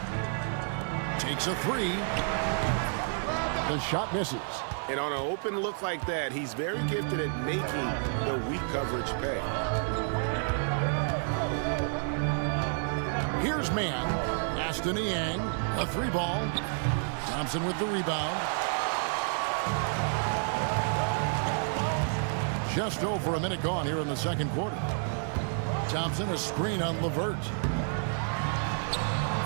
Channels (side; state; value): left; silent; 58 dB below the other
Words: Takes a 3. The shot misses. And on an open look like that, he's very gifted at making the weak coverage pay. Here's man. Aston Yang, a 3-ball. Thompson with the rebound. Just over a minute gone here in the second quarter. Thompson, a screen on LeVert.